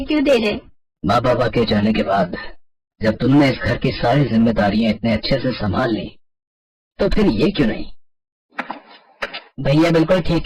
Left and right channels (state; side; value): identical; both; correlation 1.00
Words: क्यों दे रहे? माँ बाबा के जाने के बाद जब तुमने इस घर की सारी जिम्मेदारियां इतने अच्छे से संभाल ली, तो फिर ये क्यों नहीं? भैया बिल्कुल ठीक